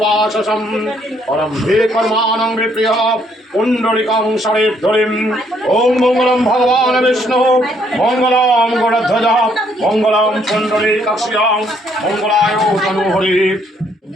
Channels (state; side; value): normal; both; correlation 0.68